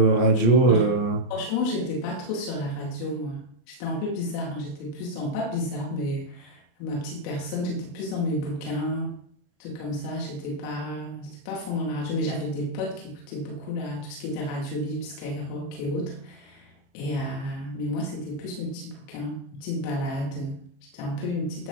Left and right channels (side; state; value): right; late; 33 ms